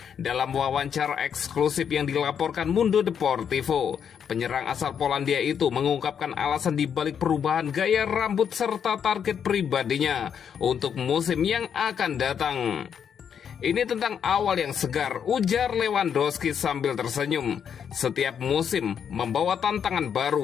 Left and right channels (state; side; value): quieter; right; 7.8 dB